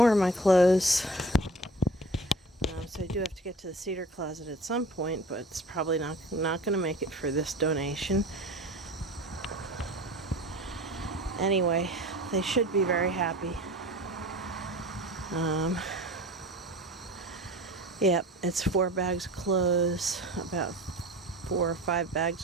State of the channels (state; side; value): normal; both; correlation 0.39